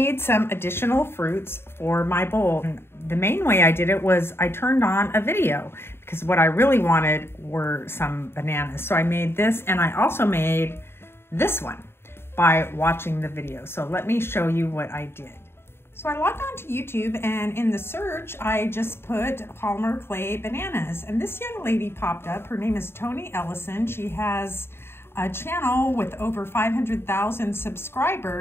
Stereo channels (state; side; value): late; right; 0.11 ms